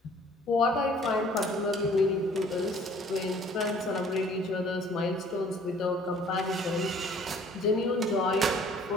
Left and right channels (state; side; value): normal; both; correlation 0.55